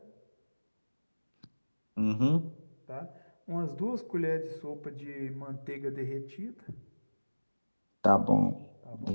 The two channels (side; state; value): both; inverted; correlation -1.00